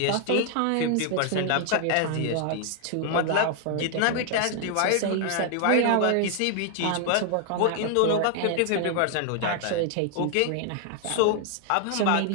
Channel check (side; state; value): both; different; correlation 0.00